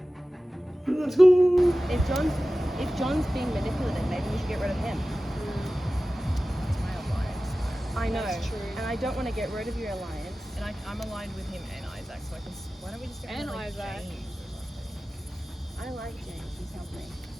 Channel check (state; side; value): normal; both; correlation 0.96